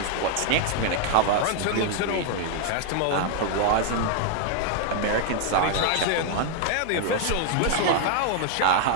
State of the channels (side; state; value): both; different; correlation 0.00